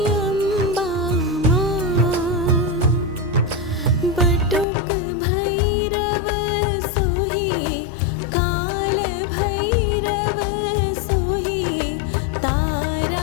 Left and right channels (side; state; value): right; drops out; at 4.7 s